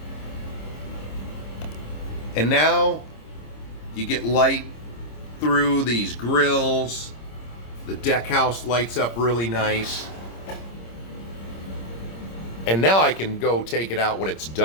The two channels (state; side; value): late; right; 26 ms